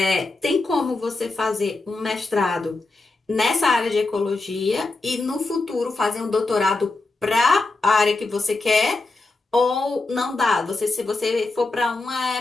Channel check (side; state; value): right; quieter; 3.4 dB